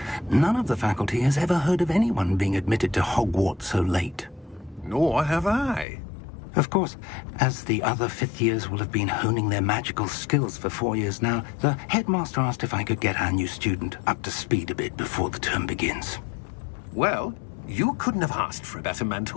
None of the faculty has ever heard of anyone being admitted to Hogwarts so late. Nor have I. Of course, as the other 5th years will have been honing their magical skills for 4 years now, the headmaster asked if I could get our new student up to speed a bit before the term begins. Well, you couldn't have asked for a better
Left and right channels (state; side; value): drops out; right; at 5.9 s